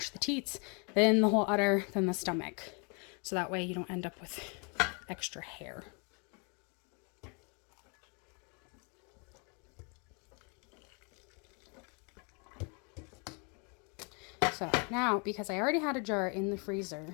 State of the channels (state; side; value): quieter; right; 34.5 dB